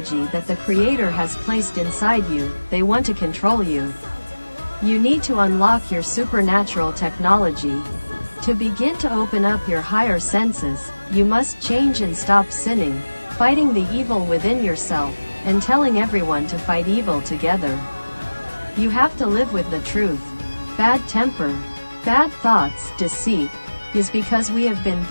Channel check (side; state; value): both; inverted; correlation -1.00